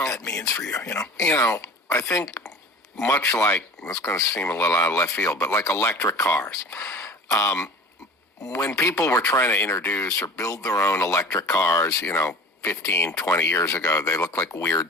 that means for you, I think much like, it's going to seem a little out of left field, but like electric cars. When people were trying to introduce or build their own electric cars, 15, 20 years ago, they looked like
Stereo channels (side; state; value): both; normal; correlation 0.40